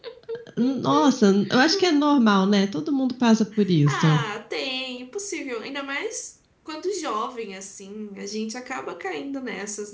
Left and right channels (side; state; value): both; identical; correlation 1.00